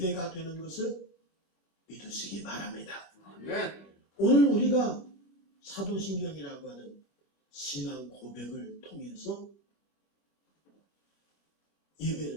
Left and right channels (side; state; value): right; late; 25 ms